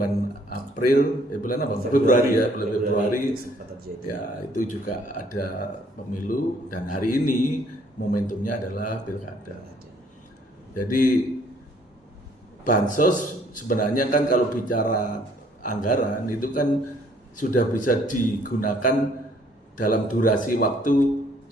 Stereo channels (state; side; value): normal; both; correlation 0.62